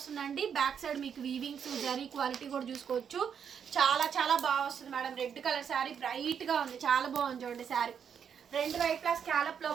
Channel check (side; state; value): left; quieter; 7.6 dB